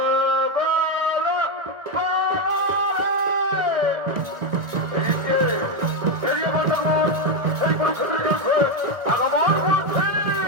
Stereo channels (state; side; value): late; left; 1.3 ms